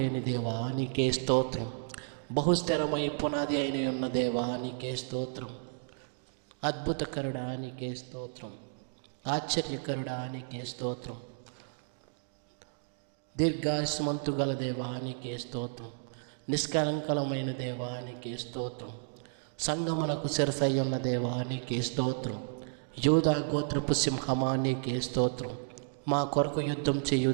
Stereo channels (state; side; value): silent; left; digital silence